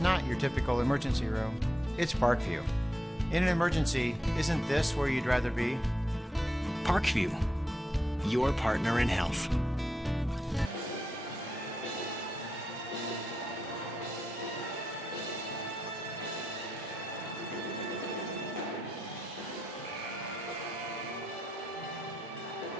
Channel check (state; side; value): normal; both; correlation 0.85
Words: your typical emergency room. It's Parkview. In an emergency, isn't this where you'd rather be? Parkview, your partner in health.